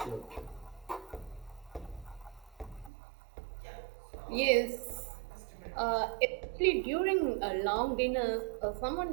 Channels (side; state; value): left; drops out; at 2.9 s